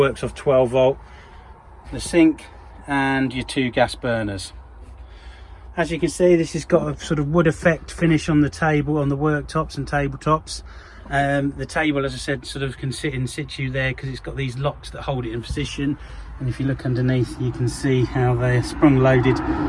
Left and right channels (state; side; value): identical; both; correlation 1.00